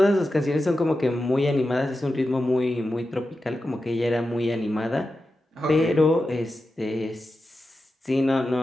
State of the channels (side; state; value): both; normal; correlation 0.91